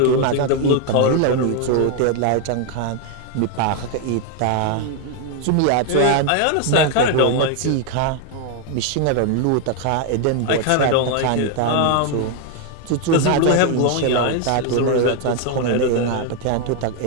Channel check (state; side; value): different; both; correlation 0.01